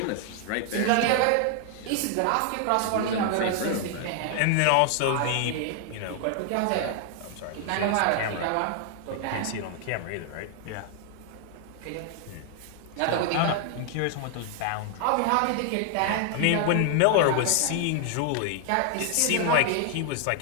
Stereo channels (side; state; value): both; different; correlation 0.00